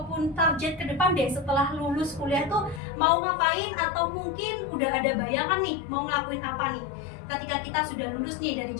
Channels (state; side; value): drops out; right; at 2.8 s